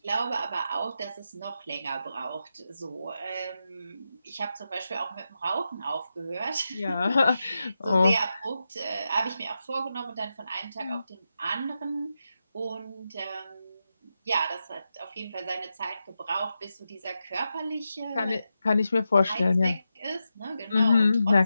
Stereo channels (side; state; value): both; inverted; correlation -0.88